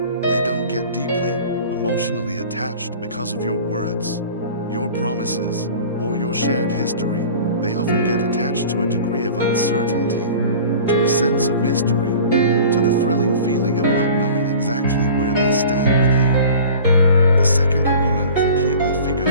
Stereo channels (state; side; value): inverted; both; correlation -0.42